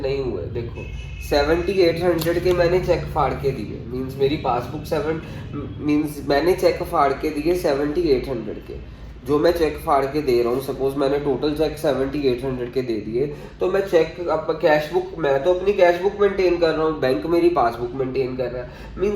हुए? देखो 7800 के मैंने चेक फाड़ के दिए। मीन्स मेरी पासबुक मीन्स मैंने चेक फाड़ के दिए 7800 के। जो मैं चेक फाड़ के दे रहा हूँ, सपोज मैंने टोटल चेक 7800 के दे दिए, तो मैं चेक अब कैश बुक, मैं तो अपनी कैश बुक मेंटेन कर रहा हूँ, बैंक मेरी पासबुक मेंटेन कर रहा है।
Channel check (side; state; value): both; identical; correlation 1.00